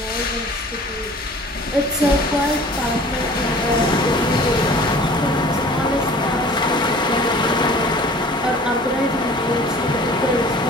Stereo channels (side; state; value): both; normal; correlation 0.47